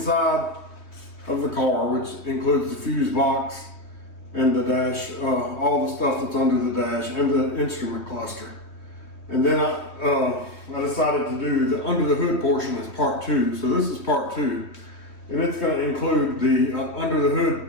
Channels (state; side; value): late; right; 3.2 ms